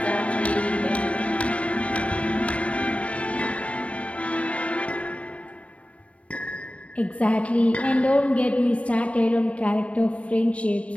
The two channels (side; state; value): right; late; 0.064 ms